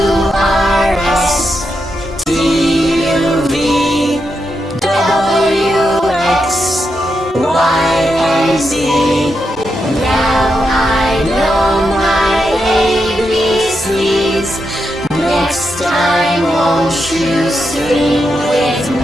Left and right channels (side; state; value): both; normal; correlation 0.85